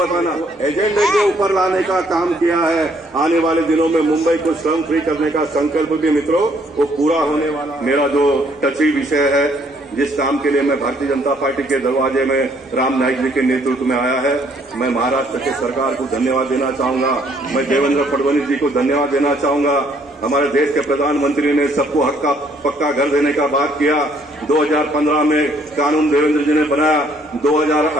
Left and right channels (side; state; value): both; normal; correlation 0.66